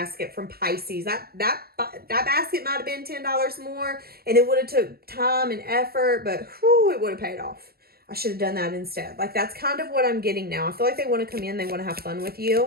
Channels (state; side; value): late; left; 0.45 ms